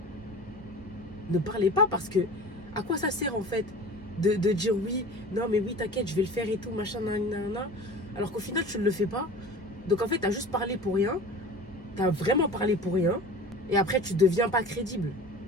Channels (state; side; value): normal; both; correlation 0.38